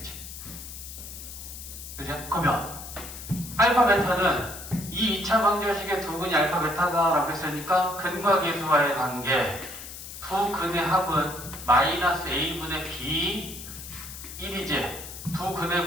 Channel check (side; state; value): left; noise; hiss, 12 dB below the sound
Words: 그죠? 그러면 알파 베타는 이 2차 방정식의 두 근이 알파 베타다라고 했으니까 근과 계수와의 관계 두 근의 합은 마이너스 a분의 b 1이지. 두 근의